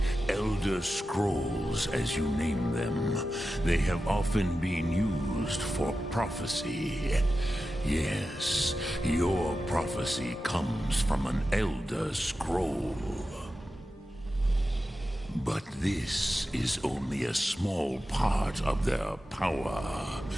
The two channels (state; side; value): normal; both; correlation 0.92